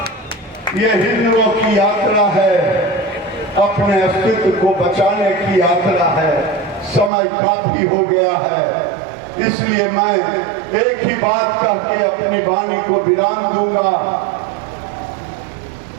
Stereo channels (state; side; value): drops out; left; at 7.1 s